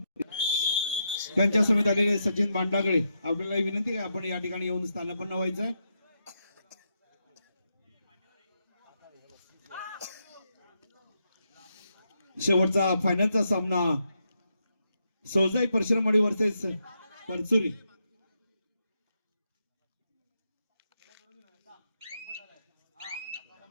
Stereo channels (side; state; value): both; inverted; correlation -0.82